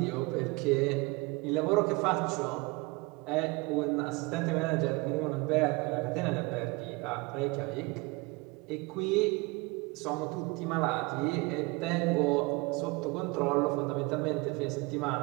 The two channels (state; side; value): quieter; left; 25.4 dB